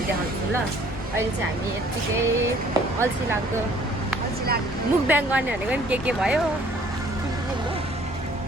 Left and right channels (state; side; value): normal; both; correlation 0.57